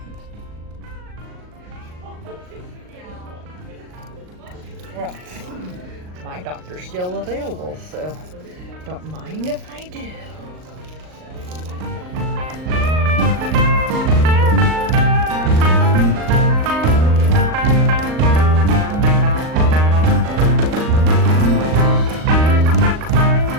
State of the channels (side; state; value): left; late; 38 ms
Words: Well, my doctor's still available, so don't mind if I do.